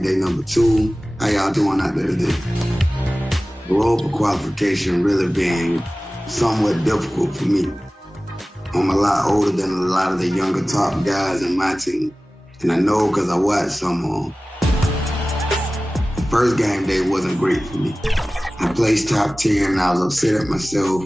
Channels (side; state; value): both; normal; correlation 0.97